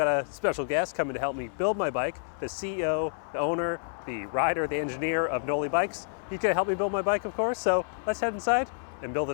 a special guest coming to help me build my bike, the CEO, the owner, the rider, the engineer of Noli Bikes. He's gonna help me build my bike, of course, so let's head inside and build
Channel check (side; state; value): right; silent; 59 dB below the other